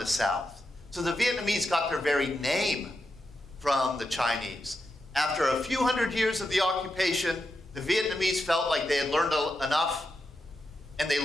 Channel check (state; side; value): normal; both; correlation 0.87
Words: the South. So the Vietnamese got their very name from the Chinese. After a few hundred years of the occupation, the Vietnamese felt like they had learned enough, and they